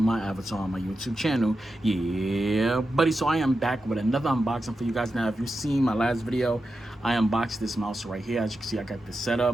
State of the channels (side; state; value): both; normal; correlation 0.90